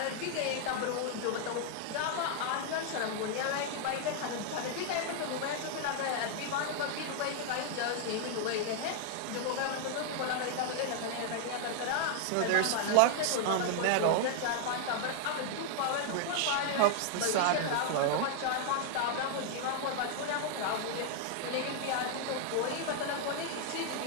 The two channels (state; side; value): different; both; correlation 0.00